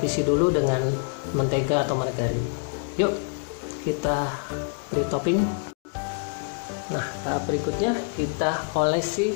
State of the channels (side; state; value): right; quieter; 37.8 dB